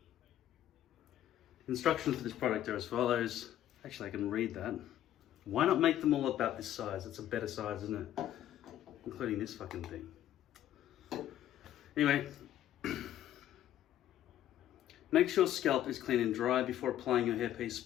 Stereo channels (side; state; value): right; quieter; 12.1 dB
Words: Instructions for this product are as follows. Actually, I can read that. Why not make them all about this size? It's a better size, isn't it? Including this fucking thing. Anyway. Make sure scalp is clean and dry. Before applying your hairpiece,